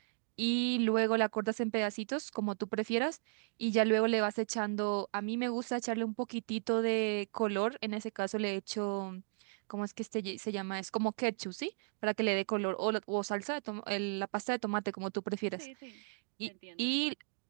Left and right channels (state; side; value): silent; left; 54 dB below the other